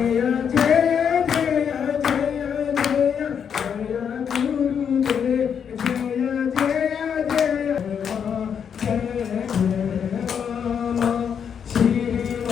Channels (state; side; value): quieter; right; 7.6 dB